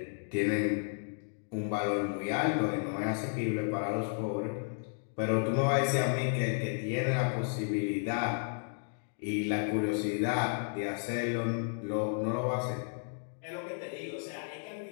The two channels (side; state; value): right; silent; 56 dB below the other